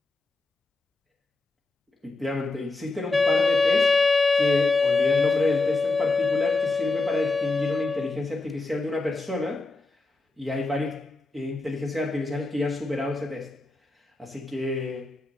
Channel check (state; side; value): quieter; right; 3.3 dB